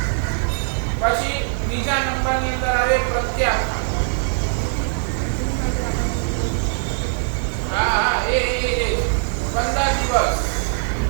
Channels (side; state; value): left; silent; 65 dB below the other